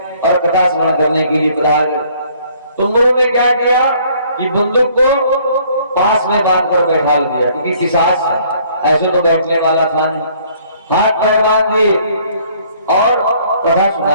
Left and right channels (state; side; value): inverted; both; correlation -0.60